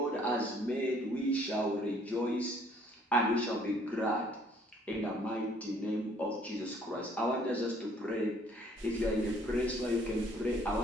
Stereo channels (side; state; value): both; normal; correlation 0.60